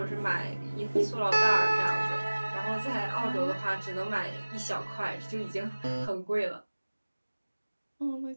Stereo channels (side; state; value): both; inverted; correlation -1.00